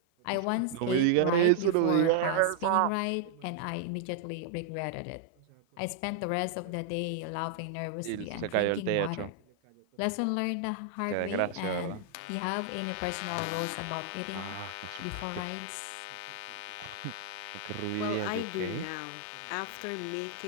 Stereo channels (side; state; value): both; different; correlation 0.00